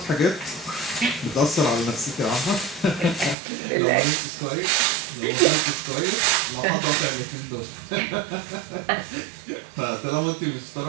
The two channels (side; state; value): left; drops out; at 3.4 s